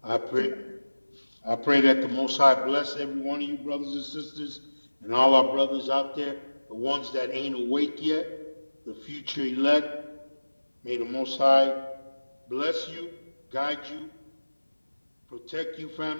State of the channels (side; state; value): both; inverted; correlation -1.00